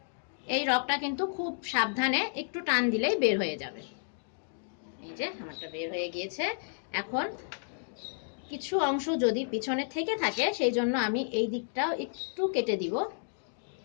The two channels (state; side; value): silent; right; digital silence